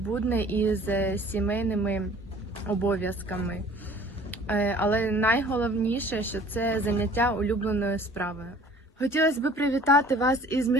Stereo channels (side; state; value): both; normal; correlation 0.51